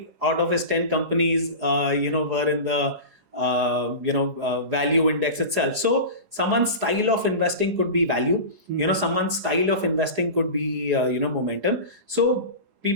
out of his 10 companies, were in the value index itself. So someone's style of investing could be value. Someone's style of investing could be momentum. So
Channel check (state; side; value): late; left; 4.8 ms